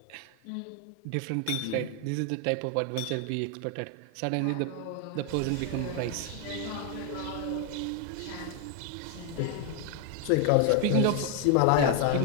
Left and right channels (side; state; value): both; different; correlation 0.01